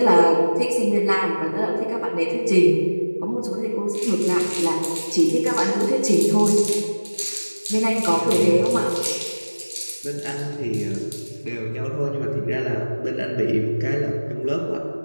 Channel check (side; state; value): both; inverted; correlation -1.00